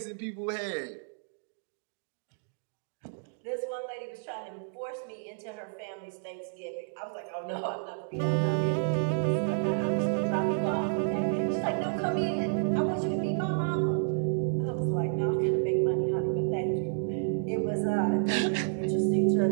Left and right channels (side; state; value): left; silent; digital silence